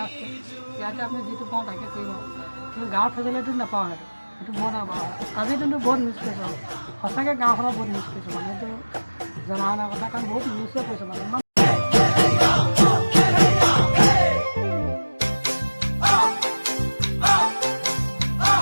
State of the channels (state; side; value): inverted; both; correlation -1.00